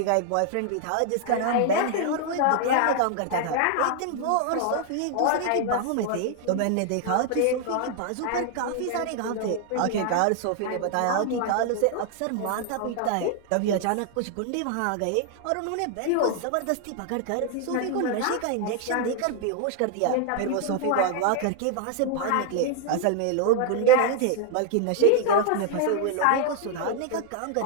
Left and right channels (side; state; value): both; different; correlation 0.00